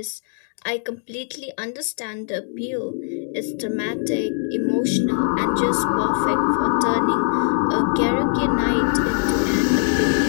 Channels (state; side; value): silent; right; 57 dB below the other